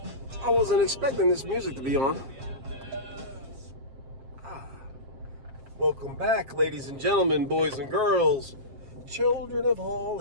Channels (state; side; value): late; left; 7.5 ms